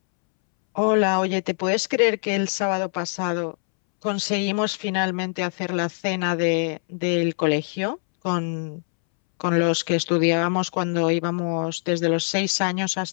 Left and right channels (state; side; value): silent; right; 63 dB below the other